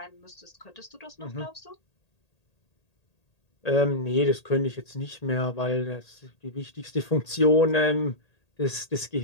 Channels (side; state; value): right; late; 1.8 ms